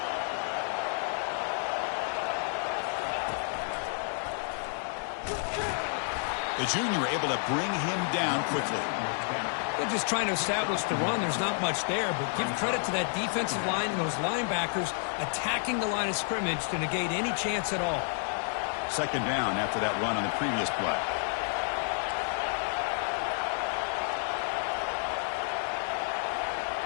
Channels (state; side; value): silent; right; 58 dB below the other